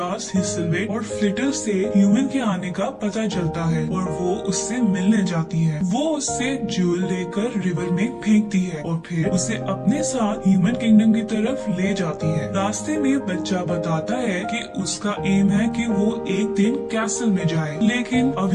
हिसलवेट और फ्लिटर से ह्यूमन के आने का पता चलता है और वो उससे मिलने जाती है। वो उससे ज्यूल लेकर रिवर में फेंकती है और फिर उसे अपने साथ ह्यूमन किंगडम की तरफ ले जाती है। रास्ते में बच्चा बताता है कि उसका एम है कि वो एक दिन कैसल में जाए, लेकिन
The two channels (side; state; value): both; identical; correlation 1.00